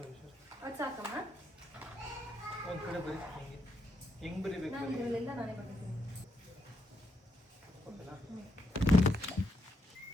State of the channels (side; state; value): both; normal; correlation 0.79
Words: ಅದು ಸಾಕಮ್ಮ. ಒಂದು ಕಡೆ ಬರೀ ಹೆಂಗೆ ಬರೀಬೇಕು? ನಾನು ಇದರಲ್ಲಿಂದ ನಾನೇ ಬರ್ತೀನಿ.